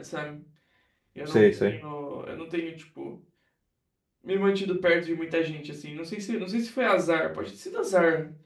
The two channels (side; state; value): both; identical; correlation 1.00